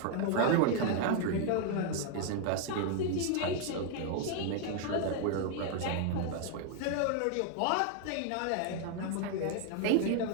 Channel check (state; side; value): different; both; correlation 0.00